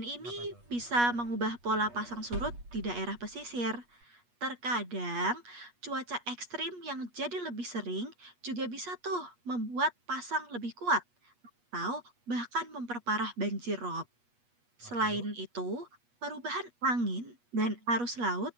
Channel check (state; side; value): late; left; 8.3 ms